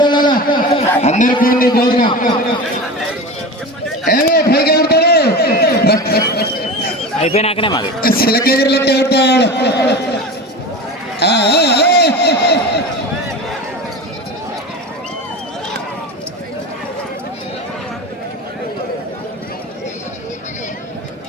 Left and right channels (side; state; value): both; normal; correlation 0.29